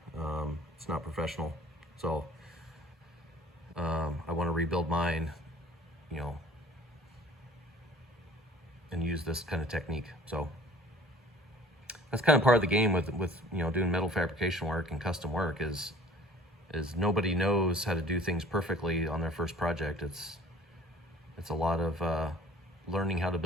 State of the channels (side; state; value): both; normal; correlation 0.50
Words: It's not professional. So I want to rebuild mine, you know, and use this kind of technique. So that's kind of part of the game with you know, doing metal fabrication work and custom work is nobody knows how to do things perfectly on their first project. It's a lot of learning how to